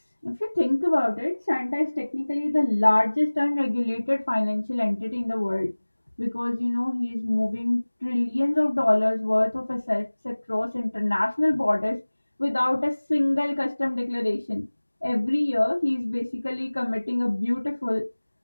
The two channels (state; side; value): inverted; both; correlation -1.00